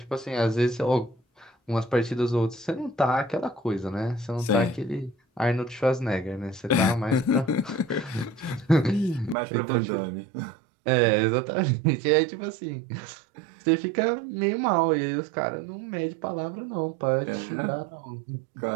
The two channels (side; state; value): left; drops out; at 9.3 s